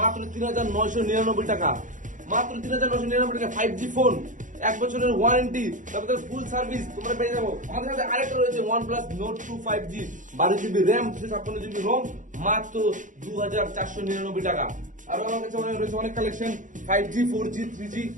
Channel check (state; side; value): late; left; 0.37 ms